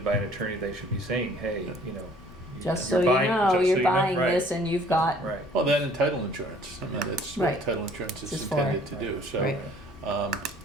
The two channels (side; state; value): both; normal; correlation 0.56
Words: by an attorney, they should be saying, hey, you know. Just you're so you buying- know, just so you're you know, buying right, this and you've got, Right. well, that and title insurance. I mean, that's what Right. title insurance is It's for. intended to do. So, Right.